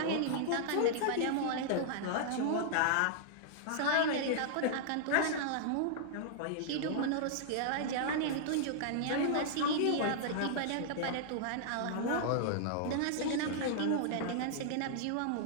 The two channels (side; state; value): both; different; correlation -0.01